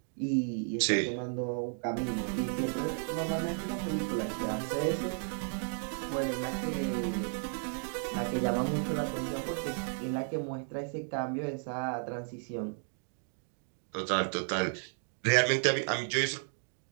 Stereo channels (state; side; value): silent; left; 55 dB below the other